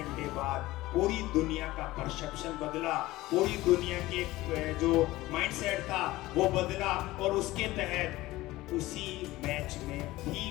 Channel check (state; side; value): quieter; right; 18.0 dB